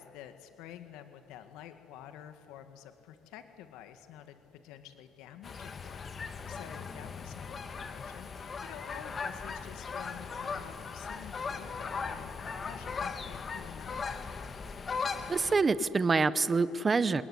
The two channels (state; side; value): normal; both; correlation 0.85